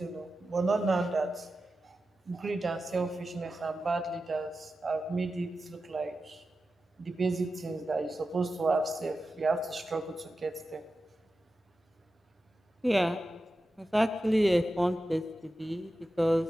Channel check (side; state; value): both; normal; correlation 0.92